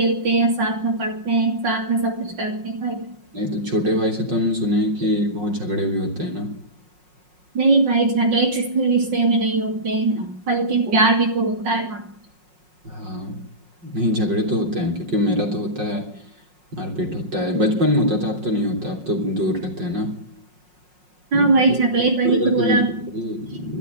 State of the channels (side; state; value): left; late; 5.5 ms